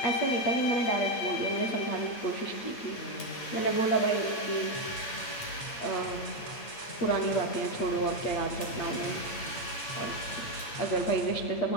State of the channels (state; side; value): late; right; 8.9 ms